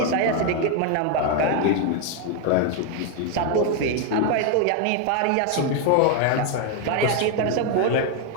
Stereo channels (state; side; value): different; both; correlation 0.01